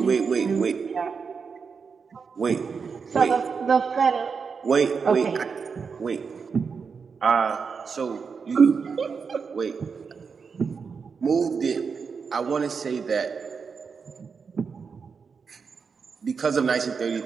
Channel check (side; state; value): left; quieter; 5.6 dB